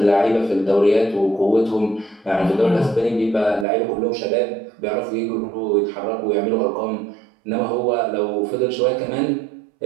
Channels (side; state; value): left; drops out; at 3.7 s